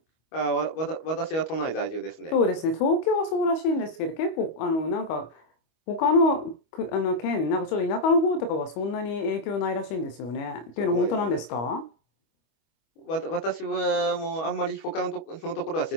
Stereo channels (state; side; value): late; right; 25 ms